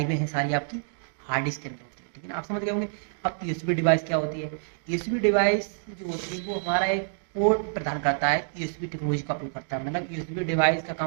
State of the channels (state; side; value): silent; left; digital silence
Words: हैं, सारी आपकी हार्ड डिस्क के अंदर होती है, ठीक है ना। आप समझ गए होंगे। अब यूएसबी डिवाइस क्या होती है? यूएसबी डिवाइस जो होती है वो हमारा एक पोर्ट प्रदान करता है, यूएसबी टेक्नोलॉजी का उपयोग करता है। मतलब यूएसबी डिवाइस का